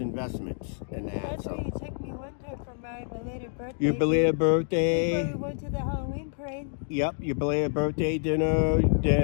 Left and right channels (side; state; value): right; silent; digital silence